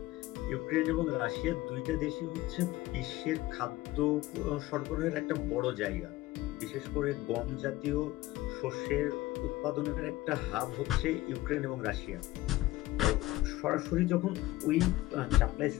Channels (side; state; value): right; quieter; 17.7 dB